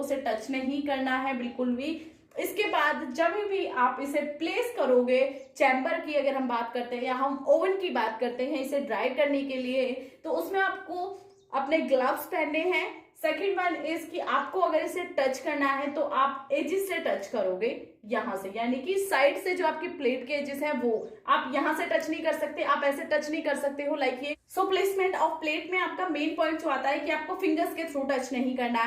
टच नहीं करना है बिल्कुल भी। इसके बाद जब भी आप इसे प्लेस करोगे, चैम्बर की अगर हम बात करते हैं या हम ओवन की बात करते हैं इसे ड्राई करने के लिए, तो उसमें आपको अपने ग्लव्स पहनने हैं। सेकेंड वन इज कि आपको अगर इसे टच करना है तो आप एजिस से टच करोगे यहां से, यानी कि साइड से जो आपकी प्लेट के एजिस है वो आप यहां से टच नहीं कर सकते, आप ऐसे टच नहीं कर सकते हो लाइक ये। सो प्लेसमेंट ऑफ प्लेट में आपका मेन पॉइंट जो आता है कि आपको फिंगर्स के थ्रू टच नहीं करना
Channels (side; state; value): both; identical; correlation 1.00